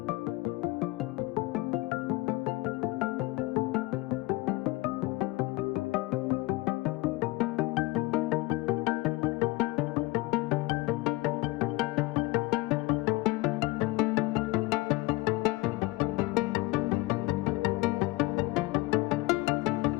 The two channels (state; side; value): quieter; right; 21.4 dB